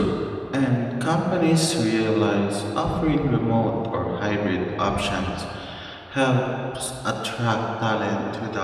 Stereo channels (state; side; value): identical; both; correlation 1.00